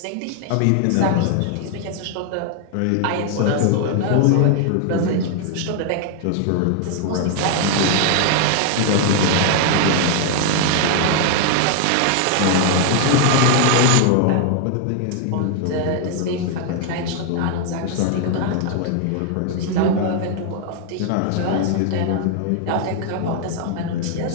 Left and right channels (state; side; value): different; both; correlation 0.00